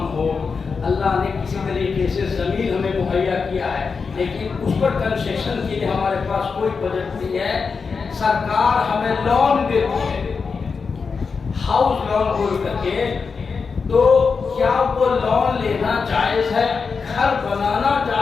ہو. اللہ نے کسی طریقے سے زمین ہمیں مہیا کیا ہے لیکن اس پر کنسیشن کے لیے ہمارے پاس کوئی بجٹ نہیں ہے. سرکار ہمیں لون دیتی ہے, ہاؤس لون بول کر کے, تو کیا وہ لون لینا جائز ہے, گھر بنانا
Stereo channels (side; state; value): right; quieter; 5.2 dB